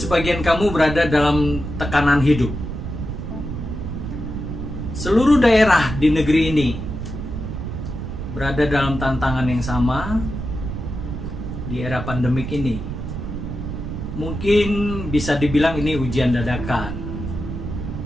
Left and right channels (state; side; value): noise; right; rumble, 6 dB below the sound